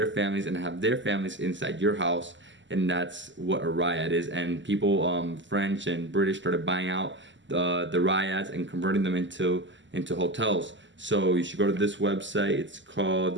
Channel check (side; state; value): left; late; 0.54 ms